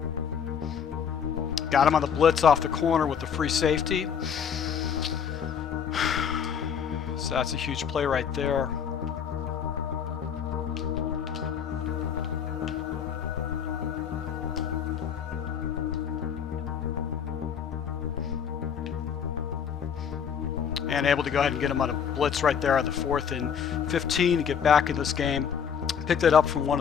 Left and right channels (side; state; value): right; quieter; 7.5 dB